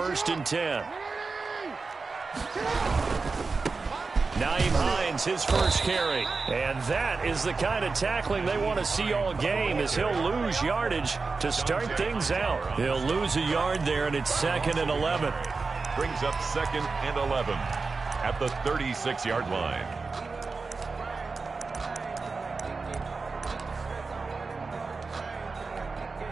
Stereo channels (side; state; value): left; quieter; 4.3 dB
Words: and 10. Naeem Hines, his first carry. And that is the kind of tackling they want to see all game, as he'll lose yardage to start things out. He'll lose a yard there, and it's 2nd and 11. Brings up 2nd and 11 at the 36-yard line.